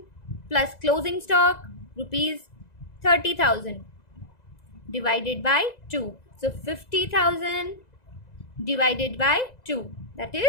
plus closing stock ₹30,000 divided by 2. So 50,000 divided by 2 that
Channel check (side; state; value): right; late; 2.0 ms